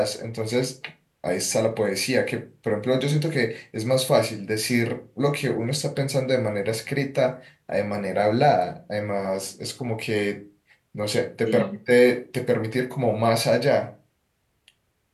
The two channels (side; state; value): both; identical; correlation 1.00